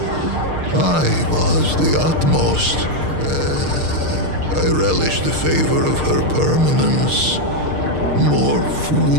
I was the utmost. I relished the favor of her permanence. More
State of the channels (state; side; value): late; left; 6.6 ms